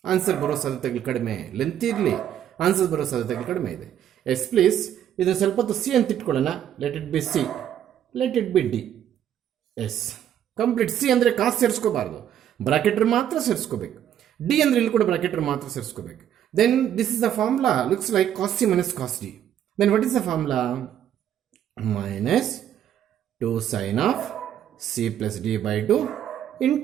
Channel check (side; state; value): left; quieter; 10.3 dB